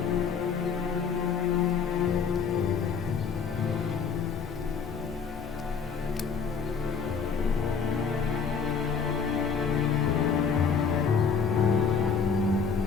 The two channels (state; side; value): quieter; right; 5.9 dB